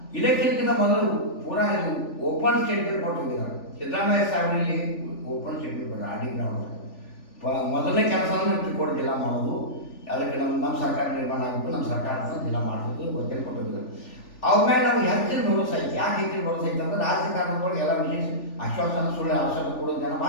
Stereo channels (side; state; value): right; late; 3.4 ms